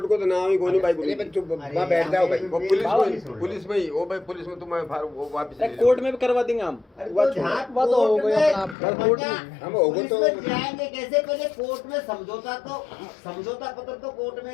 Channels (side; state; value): right; drops out; at 8.8 s